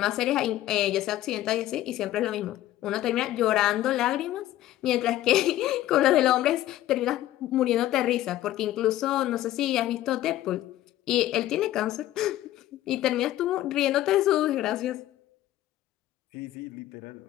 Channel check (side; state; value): right; quieter; 14.3 dB